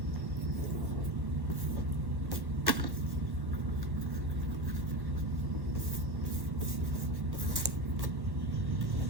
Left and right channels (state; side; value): late; left; 1.1 ms